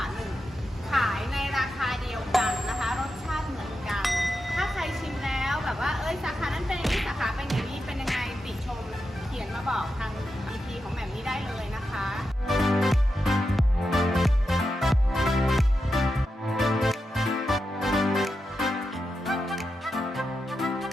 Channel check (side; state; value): both; normal; correlation 0.88